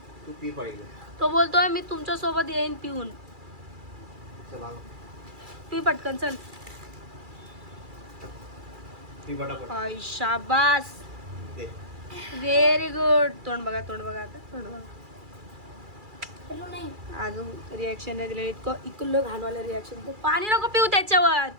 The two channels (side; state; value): left; late; 2.3 ms